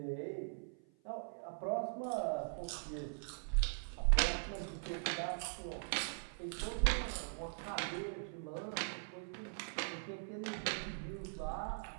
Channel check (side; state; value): left; silent; 50 dB below the other